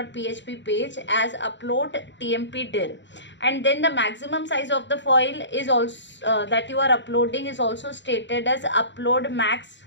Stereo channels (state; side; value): late; right; 0.53 ms